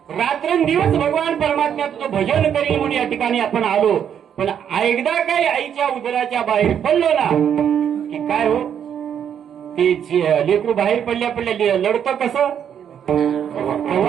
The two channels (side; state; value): left; quieter; 8.7 dB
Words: रात्रंदिवस भगवान परमात्म्या तुझं भजन करील म्हणून या ठिकाणी आपण आलो पण एकदा काही आईच्या उदराच्या बाहेर पडलो ना की काय हो ते लेकरू बाहेर पडल्या पडल्या लढतं कसं